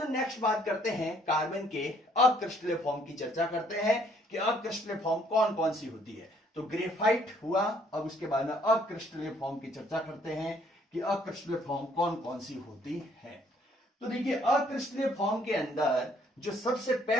नेक्स्ट बात करते हैं कार्बन के अक्रिस्टलीय फॉर्म की चर्चा करते हैं कि अक्रिस्टलीय फॉर्म कौन कौन सी होती है। तो ग्रेफाइट हुआ, अब उसके बाद में अक्रिस्टलीय फॉर्म की चर्चा करते हैं कि अक्रिस्टलीय फॉर्म कौन कौन सी होती है। तो देखिए अक्रिस्टलीय फॉर्म के अंदर जो सबसे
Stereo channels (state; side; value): normal; both; correlation 0.64